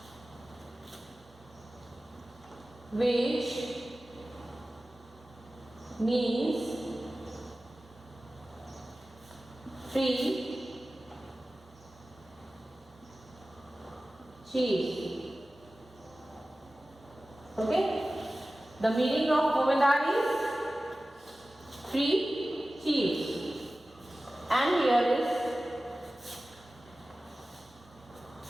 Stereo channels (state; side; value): normal; both; correlation 0.96